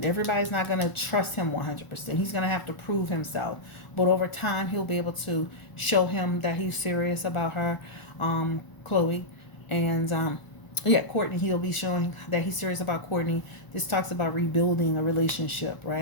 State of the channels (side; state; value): right; late; 1.0 ms